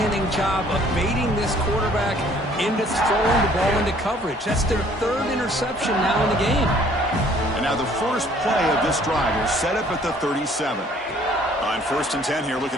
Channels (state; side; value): normal; both; correlation 0.58